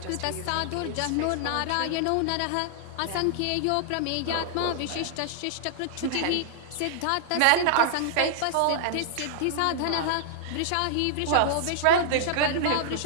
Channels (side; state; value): both; different; correlation -0.01